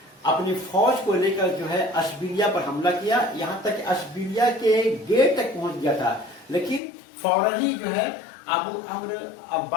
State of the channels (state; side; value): drops out; right; at 6.8 s